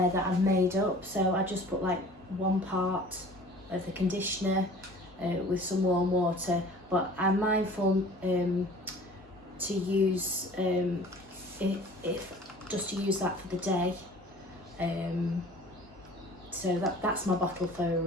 that I've made up, so I just put like 1 part of the conditioner with some warm water, but I'm mindful to use if just to use that for the day. So that's my bottle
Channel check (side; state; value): both; normal; correlation 0.47